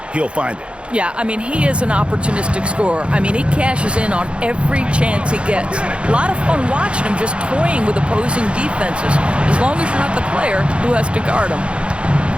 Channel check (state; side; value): late; left; 0.058 ms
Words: he'll find it. Yeah, I mean, he is an opportunistic scorer. I mean, he cashes in on every chance he gets. A lot of fun watching him just toying with opposing defenses, as long as you're not the player who has to guard him.